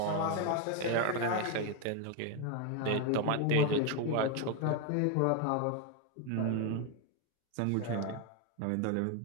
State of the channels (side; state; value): both; different; correlation 0.01